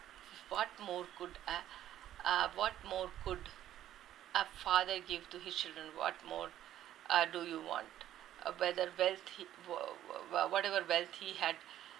What more could a father give to his children? What more do you want? Whatever wealth he had,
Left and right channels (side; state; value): left; quieter; 12.2 dB